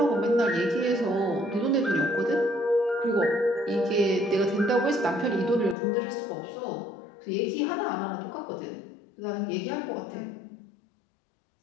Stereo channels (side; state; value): right; drops out; at 5.8 s